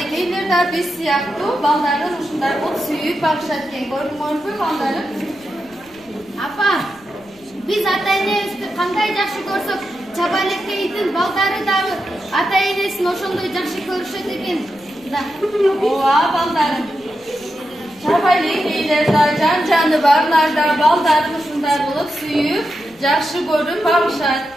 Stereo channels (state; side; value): noise; left; rumble, 28 dB below the sound